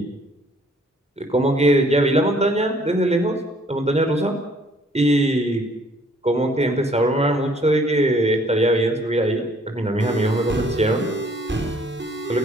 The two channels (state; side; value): normal; both; correlation 0.60